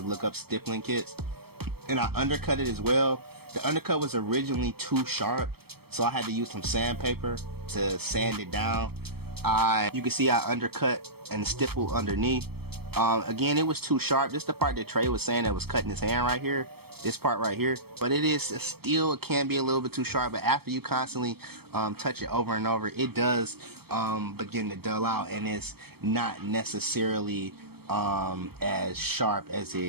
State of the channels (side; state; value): left; late; 0.96 ms